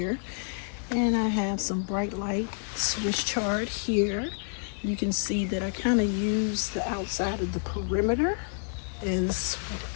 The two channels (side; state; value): right; silent; digital silence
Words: and I have some bright light Swiss chard here. You can see that I kind of use the outside of the perimeter as